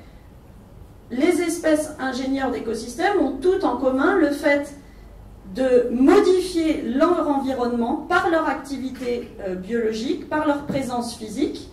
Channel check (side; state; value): both; identical; correlation 1.00